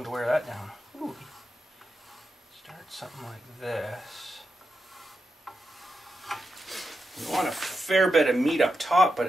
to wear that down. Ooh. Start something like this. You want a fair bit of meat up top, but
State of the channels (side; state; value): both; normal; correlation 0.88